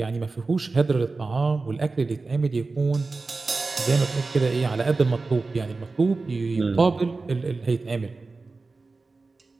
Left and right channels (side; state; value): left; quieter; 3.8 dB